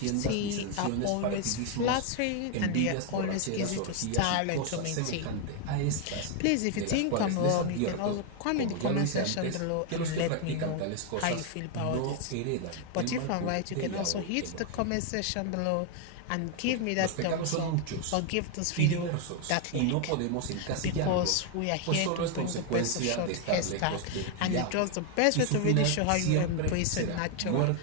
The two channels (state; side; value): different; both; correlation 0.01